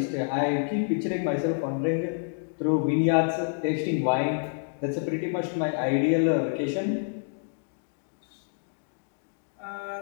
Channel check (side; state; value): right; silent; digital silence